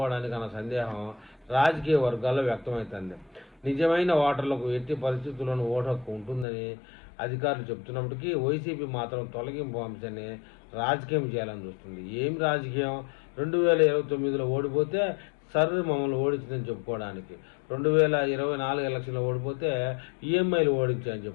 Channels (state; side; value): drops out; right; at 6.5 s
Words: అన్న సందేహం రాజకీయ వర్గాల్లో వ్యక్తమవుతుంది. నిజమైన ఓటర్లకు ఎట్టి పరిస్థితుల్లోనూ ఓటు హక్కు ఉంటుందని అధికారులు చెబుతున్నప్పటికీ వైసీపీ మాత్రం తొలగింపు అంశాన్ని రాజకీయం చేయాలని చూస్తుంది. ఏం రాజకీయం? 2029లో ఓడిపోతే మమ్మల్ని ఓడించిందని చెప్పుకోవడానికి, 2024 ఎలక్షన్లో ఓడిపోతే ఈఎంఐలు ఓడించాయని